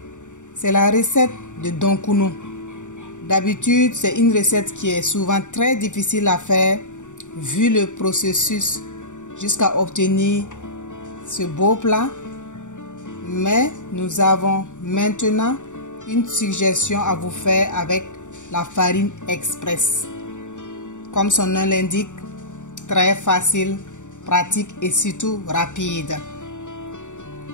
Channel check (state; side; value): late; right; 0.85 ms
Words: C'est la recette de Donkuno. D'habitude, c'est une recette qui est souvent très difficile à faire vu le processus jusqu'à obtenir ce beau plat. Mais nous avons maintenant une suggestion à vous faire avec la farine express. Comme son nom l'indique, très facile, pratique et surtout rapide.